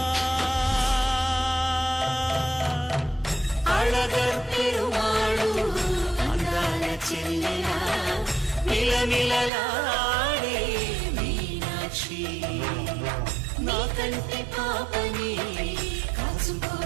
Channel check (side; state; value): left; drops out; at 9.5 s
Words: అళగర్ పెరుమాళు అందాల చెల్లెలా మిలమిలలాడే మీనాక్షి, నీ కంటి పాపని కాచుకో